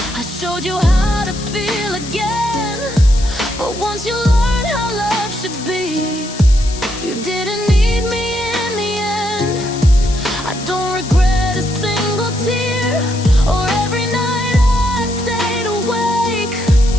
I showed you how to feel again. But once you learned how love should be, you didn't need me in the end. I don't regret a single tear, or every night I stayed awake.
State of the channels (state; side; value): noise; left; hiss, 12 dB below the sound